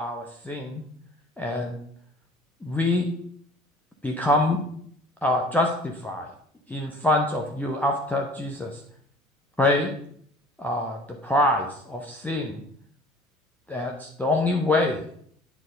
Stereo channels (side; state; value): both; normal; correlation 0.48